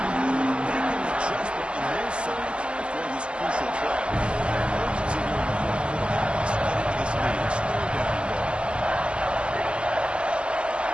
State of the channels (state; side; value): late; left; 0.052 ms